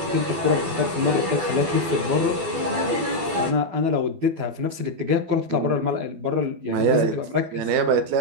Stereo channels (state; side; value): late; left; 12 ms